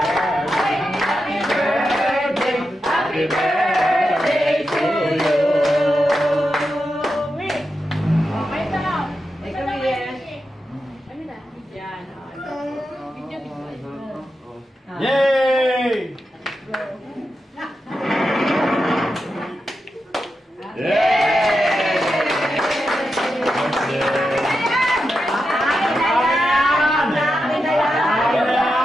happy birthday, happy birthday to you. Okay na. Ikaw na yan. Ano na? Yan. Video. Yay!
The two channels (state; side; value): normal; both; correlation 0.88